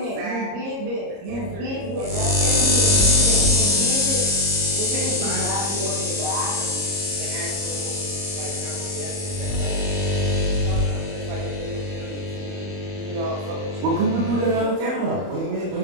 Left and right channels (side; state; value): left; late; 30 ms